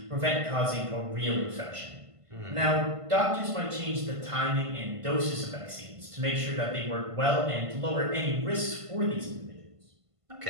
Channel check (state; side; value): late; left; 1.5 ms